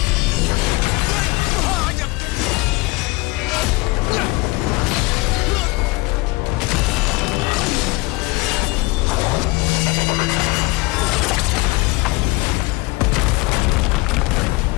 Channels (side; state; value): right; quieter; 23.9 dB